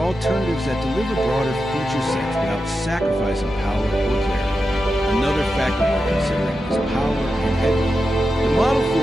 alternatives that deliver broader feature sets without sacrificing power or clarity. Another factor we're considering is power and headroom. The Model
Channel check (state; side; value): normal; both; correlation 0.90